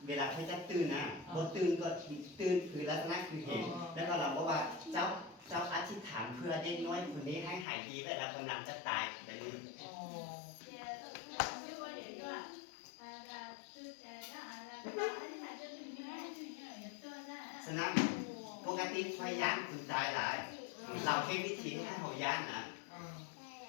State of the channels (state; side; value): drops out; right; at 7.7 s